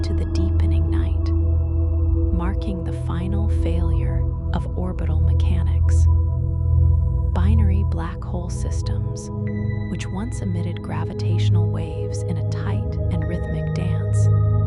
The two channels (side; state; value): both; identical; correlation 1.00